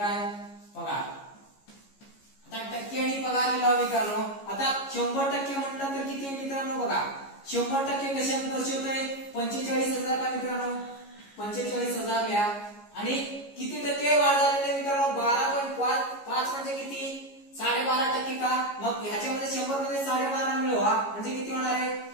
पगार. आता टक्के आणि पगार लिहिला मित्रांनो. आता 100% म्हटलं तर किती आहे मित्रांनो? बघा 100% कशात दर्शवतोय? 45,000 का मित्रांनो? 45,000 लिहा. आणि किती टक्के वाढ झालेली मित्रांनो? 12.5 म्हणजे किती? 12.5% का? मग ह्याच्यामध्ये 100 मध्ये 12.5 मिळवा म्हणजे किती होणार आहे?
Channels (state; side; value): late; right; 15 ms